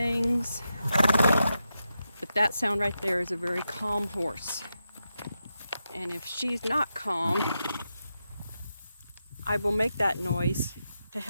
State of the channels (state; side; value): inverted; both; correlation -0.87